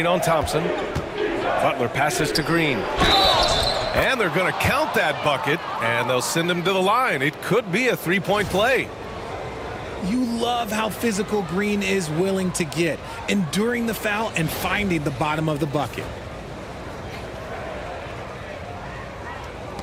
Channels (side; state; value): both; identical; correlation 1.00